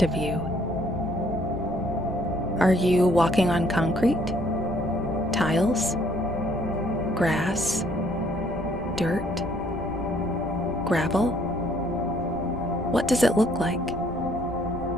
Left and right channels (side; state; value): right; noise; rumble, 14 dB below the sound